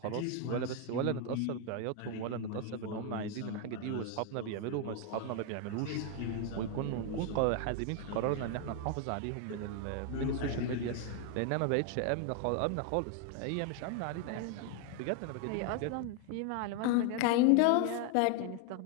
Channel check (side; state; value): both; different; correlation 0.00